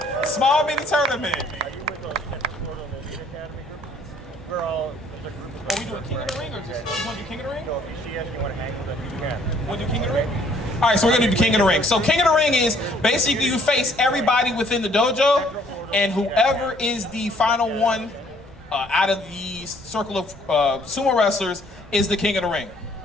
Small mini tournament. Are you with the Elite Academy group? We're all, there's a group of Are we doing King of the Ring or just you want to do King of the Ring? So if you see us, you want to hang with us, you We'll do King of the Ring? All right, so we're gonna do King of the Ring. So King of the Ring is basically you face everybody within the dojo, and whoever is the final one out of the circle of sumo wrestlers is the King of the Ring.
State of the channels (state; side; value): normal; both; correlation 0.62